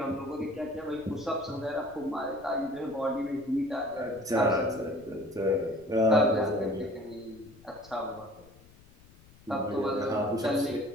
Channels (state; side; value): noise; left; rumble, 25 dB below the sound